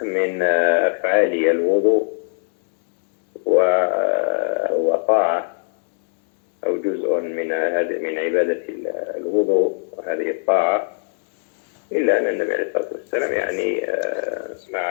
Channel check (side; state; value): right; silent; digital silence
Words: من أفعال الوضوء وطاعة أو جزء من عبادة الوضوء وهذه الطاعة، إلا أن النبي عليه الصلاة والسلام يعني